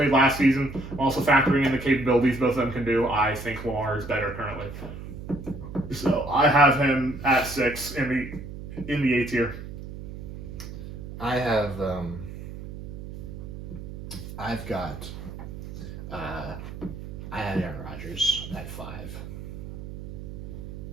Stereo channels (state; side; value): noise; right; hum, 10 dB below the sound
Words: last season. I'm also factoring in the capabilities both of them can do. I think Lamar is better currently. So I have him at 6 in the A tier. I have I've got I had Aaron Rodgers at 5